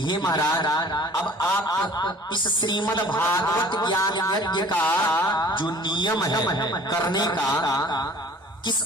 हे महाराज, अब आप इस श्रीमद् भागवत ज्ञान यज्ञ का जो नियम है करने का, किस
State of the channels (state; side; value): normal; both; correlation 0.49